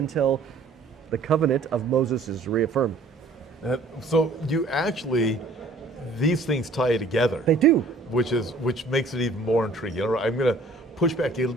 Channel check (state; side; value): quieter; left; 3.1 dB